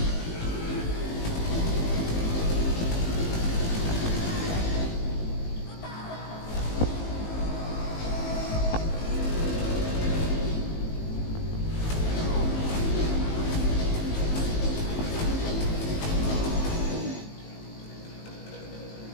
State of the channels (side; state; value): right; late; 19 ms